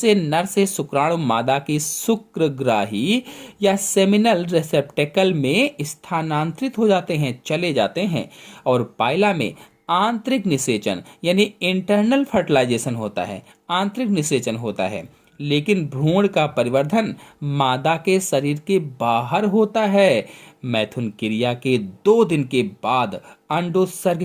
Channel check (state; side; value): identical; both; correlation 1.00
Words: नर से शुक्राणु मादा की शुक्रग्राही या सेमिनल रिसेप्टेकल में स्थानांतरित हो जाते हैं, चले जाते हैं। और पाइला में आंतरिक निषेचन यानी इंटरनल फर्टिलाइजेशन होता है, आंतरिक निषेचन होता है, लेकिन भ्रूण का परिवर्धन मादा के शरीर के बाहर होता है। मैथुन क्रिया के 2 दिन के बाद अंडोत्सर्ग